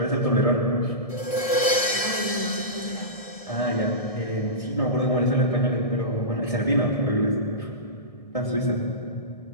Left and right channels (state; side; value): late; right; 1.7 ms